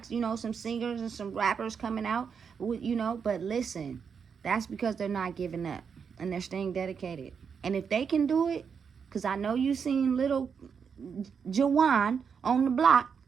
some singers and some rappers coming out. But listen, that's because they're not giving up and they're staying dedicated. And if they can do it, because I know you seen little Jawan on the block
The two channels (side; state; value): left; quieter; 6.5 dB